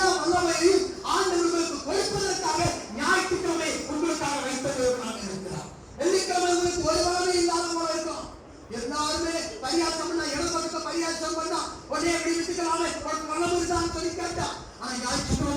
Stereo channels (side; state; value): both; identical; correlation 1.00